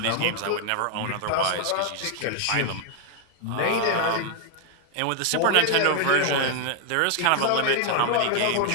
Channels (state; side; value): different; both; correlation 0.00